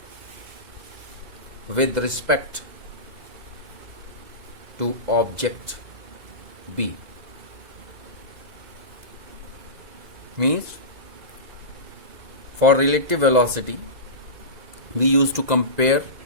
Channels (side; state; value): left; late; 2.0 ms